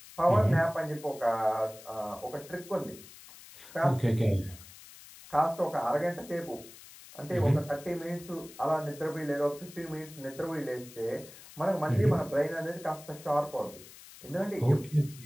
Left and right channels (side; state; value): left; noise; hiss, 18 dB below the sound